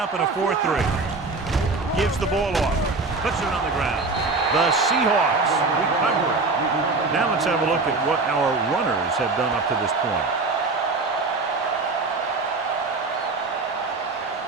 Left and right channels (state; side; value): quieter; left; 3.7 dB